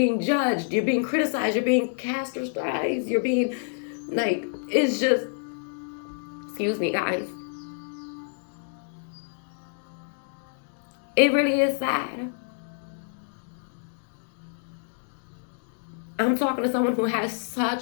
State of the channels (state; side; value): silent; right; digital silence